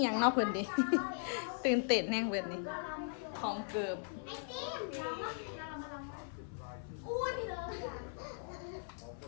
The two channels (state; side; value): silent; right; 52 dB below the other